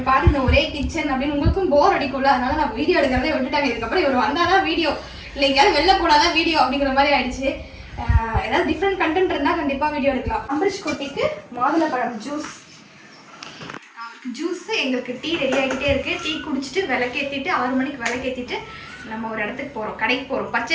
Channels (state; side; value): identical; both; correlation 1.00